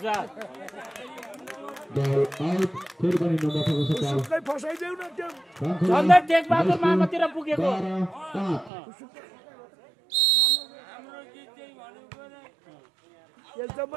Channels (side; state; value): left; drops out; at 8.7 s